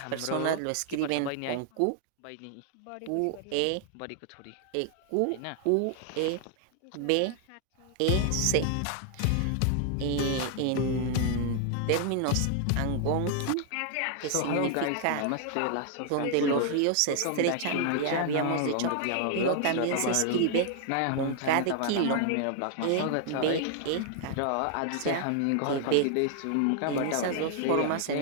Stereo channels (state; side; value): different; both; correlation 0.00